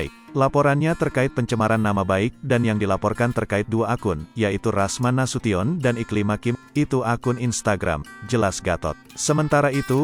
Laporannya terkait pencemaran nama baik, dan yang dilaporkan terkait dua akun, yaitu Rasman Nasution dan Iklima Kim, itu akun Instagram, jelas Gatot. Sementara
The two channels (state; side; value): identical; both; correlation 1.00